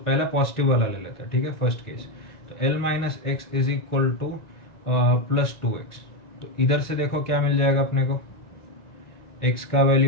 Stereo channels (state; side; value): late; right; 1.9 ms